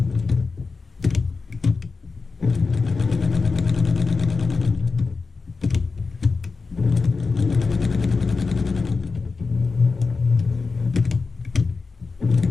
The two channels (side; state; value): right; quieter; 4.4 dB